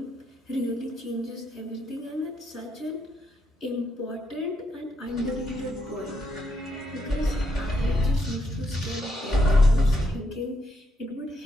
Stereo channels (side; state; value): both; normal; correlation 0.78